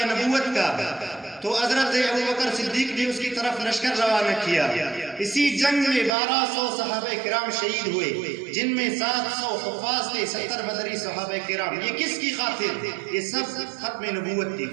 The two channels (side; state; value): left; drops out; at 6.2 s